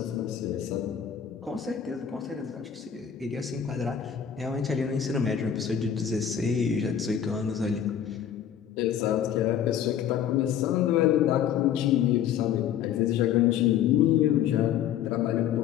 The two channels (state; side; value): quieter; right; 9.2 dB